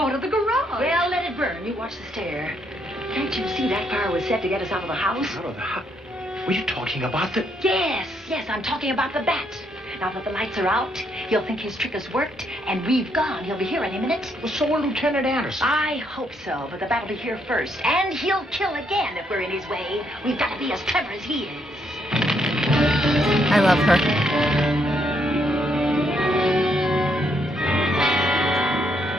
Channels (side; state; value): both; normal; correlation 0.74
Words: the garage. Well, let it burn. You watch the stair. Can't you see that fire was set to get us out of the house? Out of the house? Were you talking about the... Yes, I'm talking about the bat. Now that the lights are out, he'll think his trick has worked, and we've gone. He'll be here any minute. Well, so will Lieutenant Anderson. I hope so, but the bat will be here first. And he'll kill again if we're in his way. We've got to be as clever as he is. I love her.